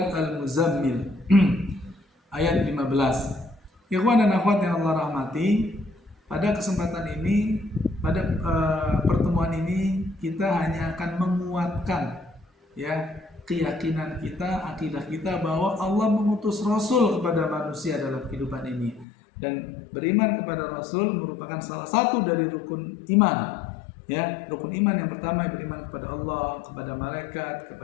Al-Muzammil ayat 15. Ikhwan dan akhwat yang Allah rahmati, pada kesempatan ini, pada pertemuan ini kita hanya akan menguatkan ya keyakinan kita, akidah kita bahwa Allah mengutus Rasul kepada manusia dalam kehidupan ini. Dan beriman kepada Rasul merupakan salah satu dari rukun iman. Ya, rukun iman yang pertama beriman kepada Allah, kepada malaikat,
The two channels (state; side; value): drops out; right; at 19.1 s